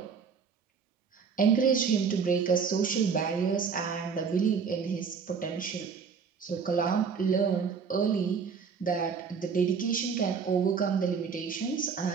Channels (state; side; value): quieter; left; 6.0 dB